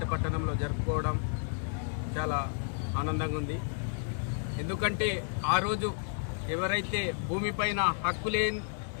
పట్టణంలో జరుపుకోవడం చాలా ఆనందంగా ఉంది. ఎందుకంటే ఆ రోజు ఎవరైతే భూమిపైన హక్కు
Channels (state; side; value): silent; right; digital silence